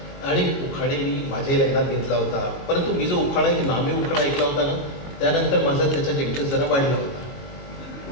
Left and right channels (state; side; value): late; right; 21 ms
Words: आणि उखाणे मी माझ्याही लग्नात घेतला होता. परंतु मी जो उखाणा एक नामी उखाणा ऐकला होता ना, त्यानंतर माझा त्याच्यात इंटरेस्ट जरा वाढला होता.